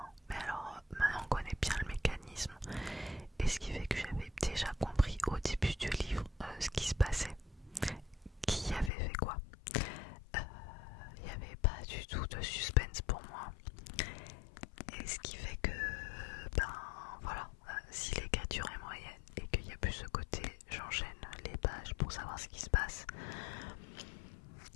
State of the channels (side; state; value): right; drops out; at 8.9 s